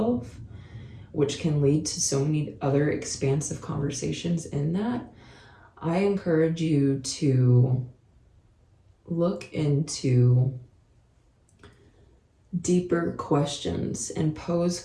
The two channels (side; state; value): both; identical; correlation 1.00